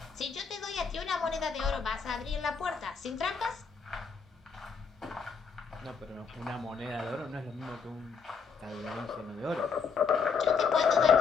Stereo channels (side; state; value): right; quieter; 5.7 dB